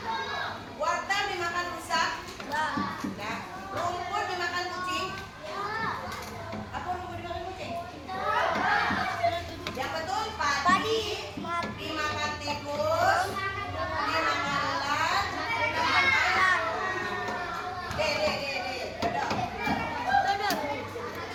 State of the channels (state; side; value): identical; both; correlation 1.00